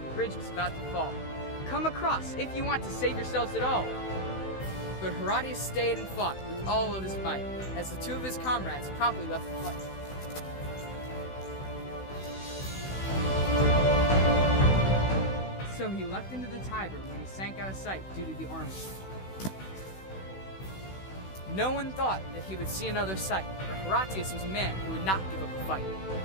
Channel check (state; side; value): late; right; 16 ms